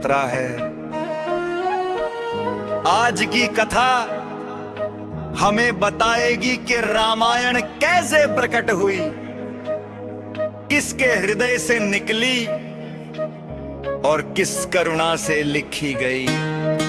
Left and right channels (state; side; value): identical; both; correlation 1.00